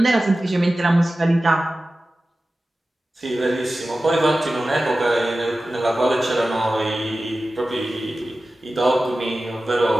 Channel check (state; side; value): normal; both; correlation 0.95